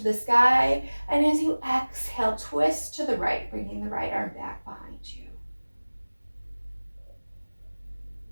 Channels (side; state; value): both; inverted; correlation -1.00